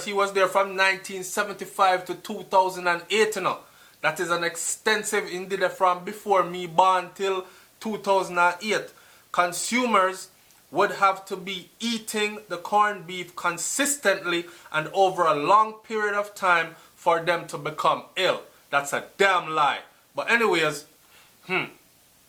he was there from 1975 to 2008, you know. That is an extensive, indeed from before me born till 2008. Consumers would have to be eating the corned beef consistently and over a long period of time for them to become ill. That's a damn lie. But anyways,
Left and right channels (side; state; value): both; identical; correlation 1.00